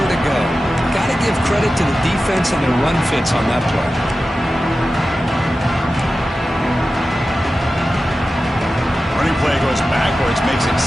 to go. Got to give credit to the defense and their run fits on that play. Running play goes backwards, makes it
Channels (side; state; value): both; normal; correlation 0.93